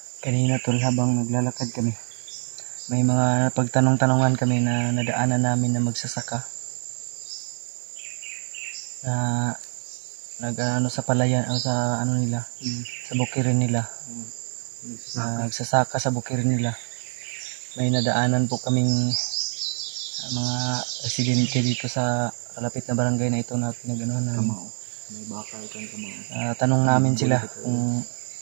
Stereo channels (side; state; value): left; silent; 56 dB below the other